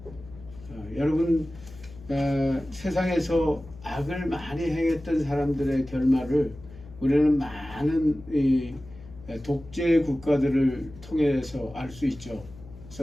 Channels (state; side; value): noise; left; hum, 18 dB below the sound